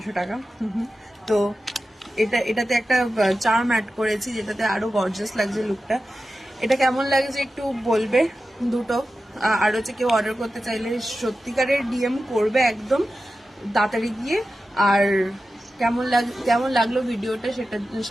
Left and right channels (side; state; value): both; normal; correlation 0.93